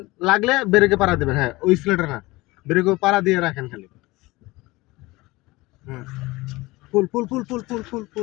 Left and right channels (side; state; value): right; quieter; 21.2 dB